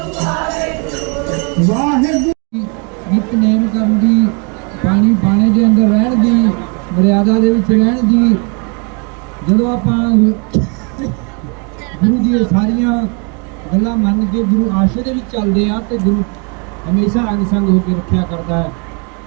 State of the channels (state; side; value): quieter; left; 35.2 dB